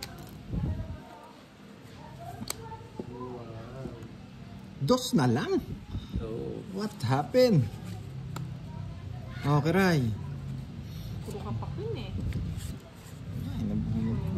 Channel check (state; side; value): identical; both; correlation 1.00